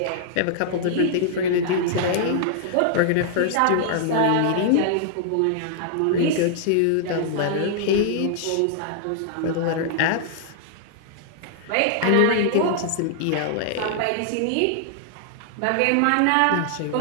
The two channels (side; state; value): both; different; correlation -0.01